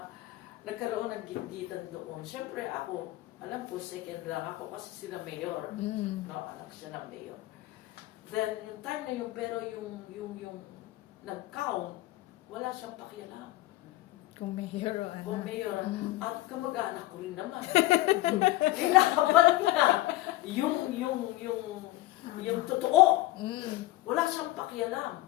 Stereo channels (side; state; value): right; quieter; 17.5 dB